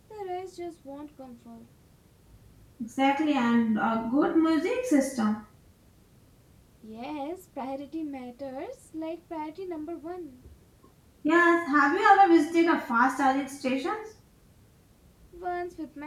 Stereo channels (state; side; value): identical; both; correlation 1.00